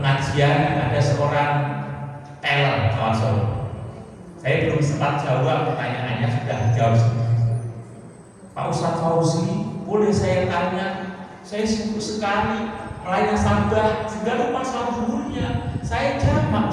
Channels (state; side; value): identical; both; correlation 1.00